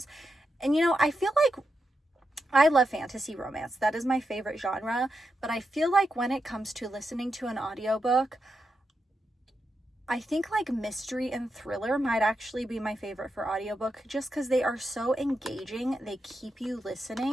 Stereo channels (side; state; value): both; normal; correlation 0.86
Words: And, you know, I feel like I love fantasy romance. That is my favorite genre. But I feel like when it comes to listening to an audiobook, I think like mystery and thriller might actually be my favorite for audiobook, just because they are so engaging. They keep you